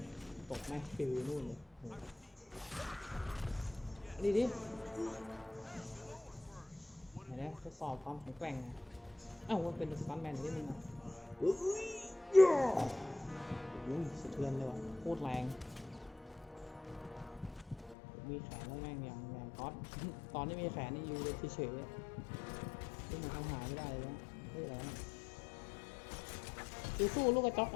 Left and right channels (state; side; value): drops out; right; at 17.9 s